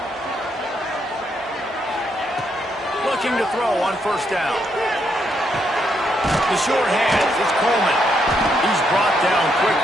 Looking to throw on first down. The short hands, it's Coleman. He's brought down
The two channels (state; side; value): normal; both; correlation 0.77